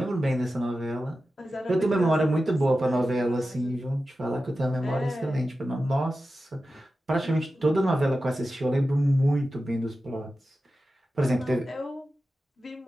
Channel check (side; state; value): both; normal; correlation 0.93